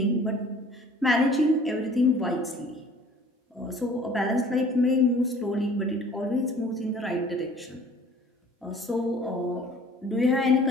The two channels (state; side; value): normal; both; correlation 0.51